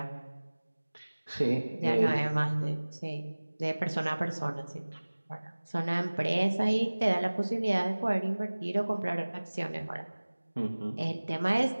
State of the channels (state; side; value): inverted; both; correlation -1.00